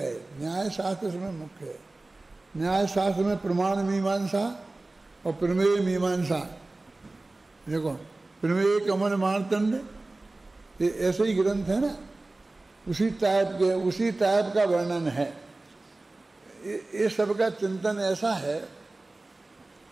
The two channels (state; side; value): quieter; left; 3.0 dB